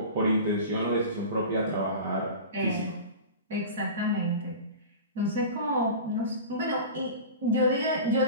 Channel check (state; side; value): inverted; both; correlation -0.33